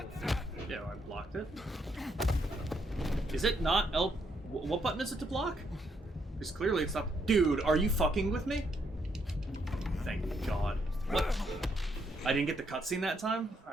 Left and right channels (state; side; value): normal; both; correlation 0.74